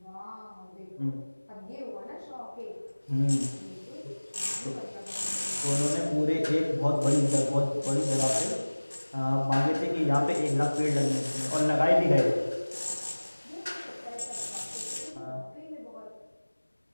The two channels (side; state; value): both; inverted; correlation -1.00